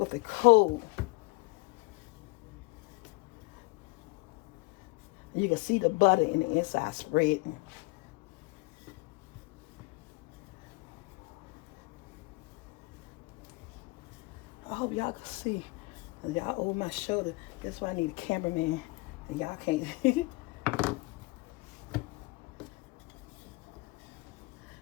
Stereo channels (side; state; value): right; quieter; 25.5 dB